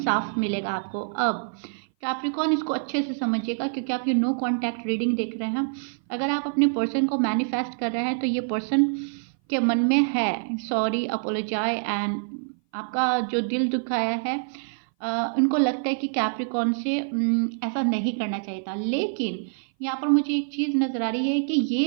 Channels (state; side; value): silent; left; 58 dB below the other